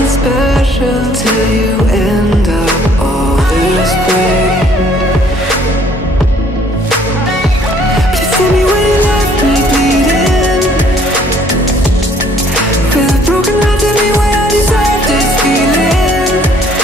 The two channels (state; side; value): normal; both; correlation 0.61